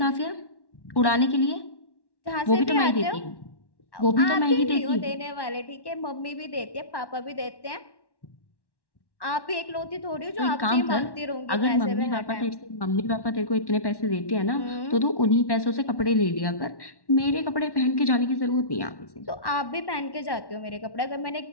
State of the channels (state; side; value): late; right; 1.1 ms